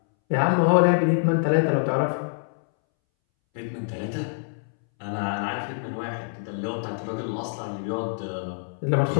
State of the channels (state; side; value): silent; right; 61 dB below the other